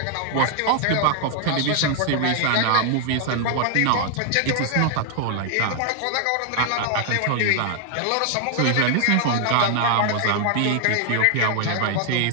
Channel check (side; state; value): both; different; correlation 0.00